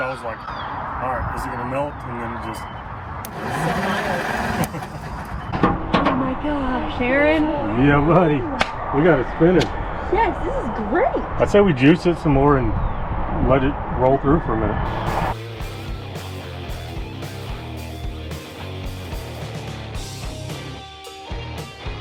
I was like, alright, is it gonna melt? And then it just... Oh my gosh, Aaron. Yeah, buddy. We got it spinning. Yes, this is great. I'd say we juice it some more and let it roll through for a minute.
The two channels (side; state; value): both; identical; correlation 1.00